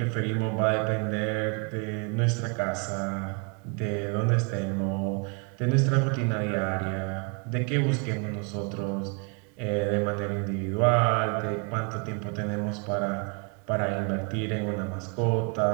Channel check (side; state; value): left; quieter; 33.3 dB